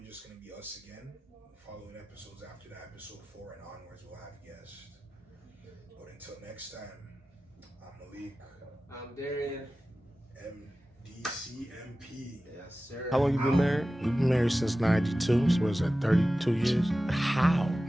just gonna be us again. Following episodes after that, episode 4 and onwards, we'll have guests. But until next time, I'm Malik. I'm Darian. MDCMP. Yes, sir. How long you been married? We've been married since 92, so what's that, 32 years? How?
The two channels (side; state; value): both; normal; correlation 0.95